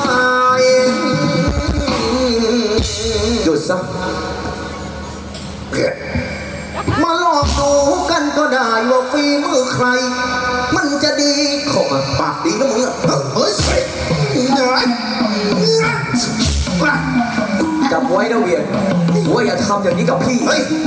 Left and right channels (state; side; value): identical; both; correlation 1.00